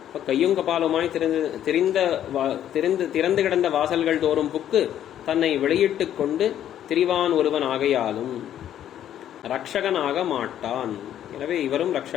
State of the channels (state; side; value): quieter; right; 10.8 dB